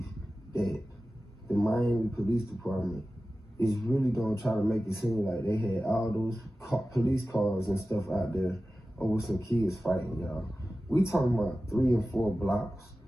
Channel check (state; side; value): normal; both; correlation 0.95